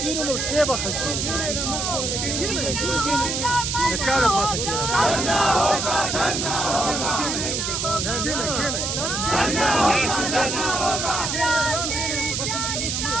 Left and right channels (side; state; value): right; noise; hiss, 1 dB below the sound